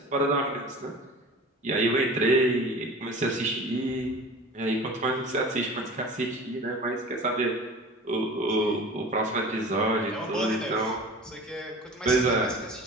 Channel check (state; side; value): normal; both; correlation 0.39